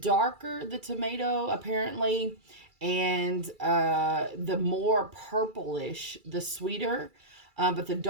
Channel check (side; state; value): left; late; 2.3 ms